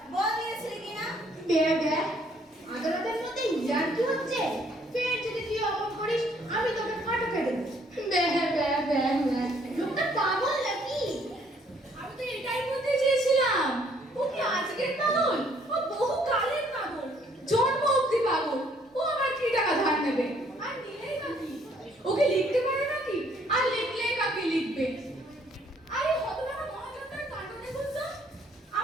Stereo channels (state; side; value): normal; both; correlation 0.64